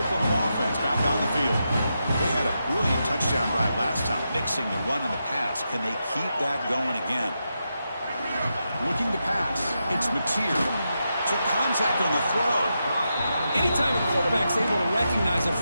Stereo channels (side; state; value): both; inverted; correlation -0.86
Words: offense back on the field. They had a brilliant touchdown drive last time, mixing the run and the pass. Can they keep that going again? Looking to pass. It's Mateer. Took contact on the throw. Anytime a quarterback's able to recognize a